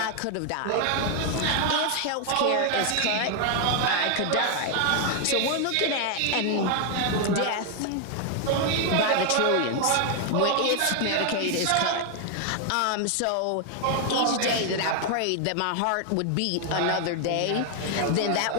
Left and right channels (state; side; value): different; both; correlation 0.00